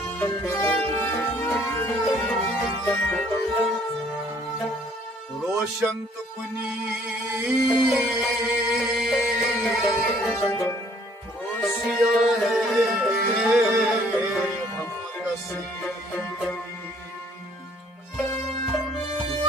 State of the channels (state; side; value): normal; both; correlation 0.60